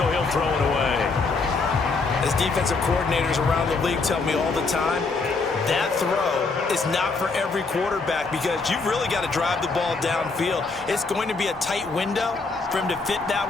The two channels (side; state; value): right; quieter; 4.0 dB